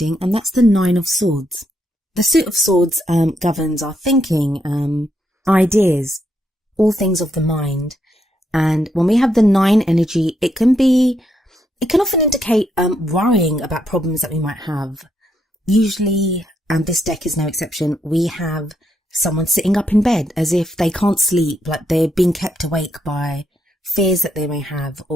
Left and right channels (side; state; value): both; normal; correlation 0.78